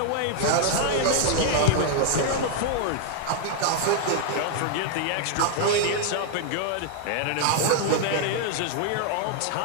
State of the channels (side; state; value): both; different; correlation 0.00